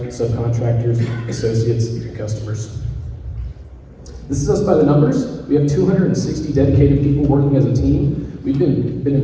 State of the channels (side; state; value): both; identical; correlation 1.00